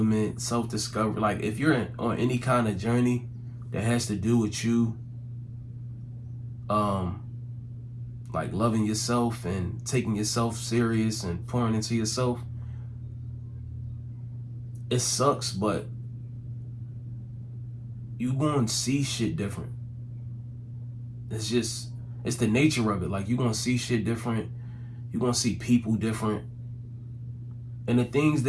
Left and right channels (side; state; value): both; identical; correlation 1.00